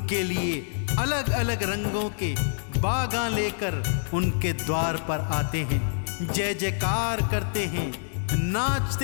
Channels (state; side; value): silent; right; digital silence